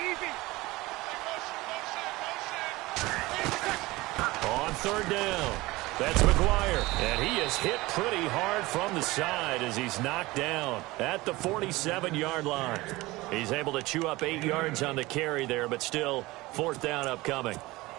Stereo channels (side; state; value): left; quieter; 20.4 dB